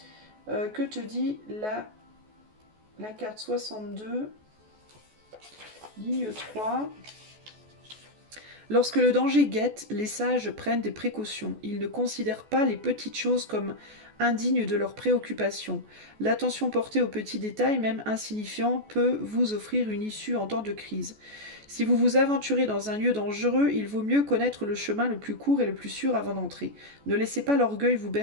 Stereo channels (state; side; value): late; left; 14 ms